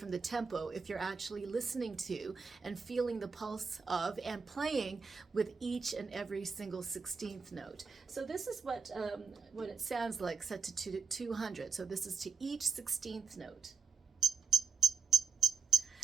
the tempo if you're actually listening to and feeling the pulse of and playing with each and every single 16th note. So this is what it sounds like set to 200. So this is to each 16th note.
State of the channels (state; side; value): quieter; left; 5.4 dB